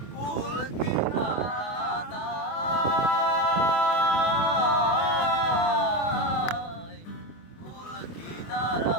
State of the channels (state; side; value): late; right; 24 ms